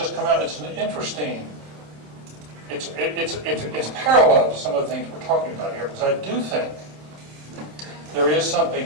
come out. It's an interesting. It's parallel to some of the things we're talking about here, because I do think there is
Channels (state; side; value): late; left; 27 ms